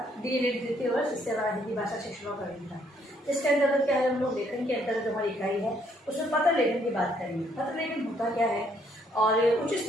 डीएलएड द्वितीय वर्ष इससे हमारा हिंदी भाषा शिक्षकों का विज्ञान, इसके अंतर्गत क्या है, हम लोग लेखन के अंतर्गत हमारी इकाई है उसमें पत्र लेखन की बात करेंगे। पत्र लेखन होता क्या है और उच्च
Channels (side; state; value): both; normal; correlation 0.68